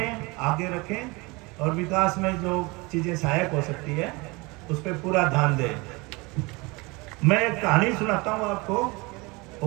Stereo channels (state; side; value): quieter; left; 25.6 dB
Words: आगे रखें, और विकास में जो चीज़ें सहायक हो सकती है उस पर पूरा ध्यान दें। मैं एक कहानी सुनाता हूँ आपको,